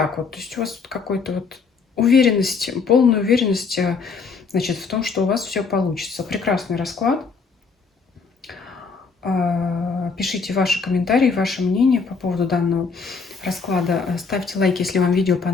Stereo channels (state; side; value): quieter; right; 5.0 dB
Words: вот. То есть у вас тут какой-то вот уверенность, полная уверенность, значит, в том, что у вас все получится. Прекрасный расклад. Пишите ваши комментарии, ваше мнение по поводу данного расклада. Ставьте лайк, если вам видео